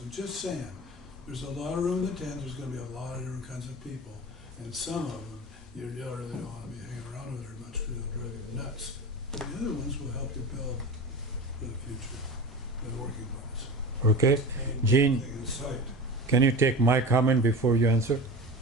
I'm just saying, there's a lot of room in the tent, there's going to be a lot of different kinds of people, and some of them you really don't want to be hanging around with very much because they'll drive you nuts. And the other ones will help you build for the future, for the working class. Okay. Gene, Thing in sight. can you take my comment before you answer?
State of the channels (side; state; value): both; normal; correlation 0.31